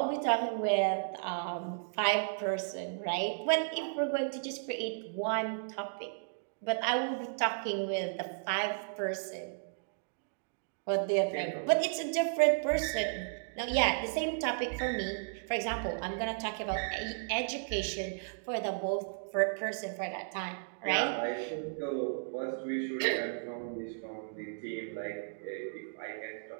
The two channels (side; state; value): left; silent; digital silence